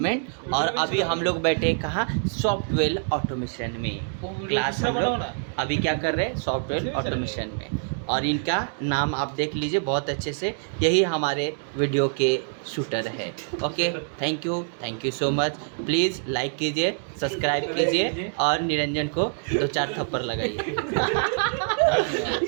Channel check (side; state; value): left; silent; digital silence